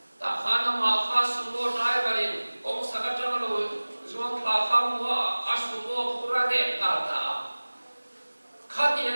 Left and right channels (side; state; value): both; inverted; correlation -1.00